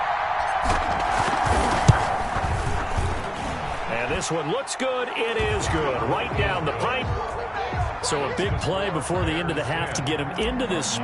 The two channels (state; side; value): identical; both; correlation 1.00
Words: And this one looks good. It is good. Right down the pipe. So a big play before the end of the half to get him into this